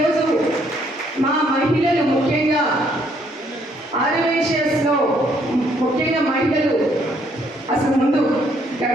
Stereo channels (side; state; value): both; normal; correlation 0.68